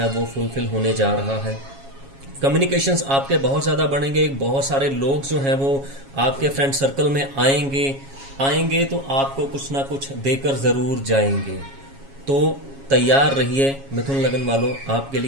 वो फुलफिल होने जा रहा है। कम्युनिकेशंस आपके बहुत ज़्यादा बढ़ेंगे, बहुत सारे लोग जो हैं वो आपके फ्रेंड सर्कल में आएंगे तो आपको कुछ ना कुछ देकर ज़रूर जाएंगे। तो तैयार रहिए मिथुन लगन वालों, आपके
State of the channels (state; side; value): late; left; 7.3 ms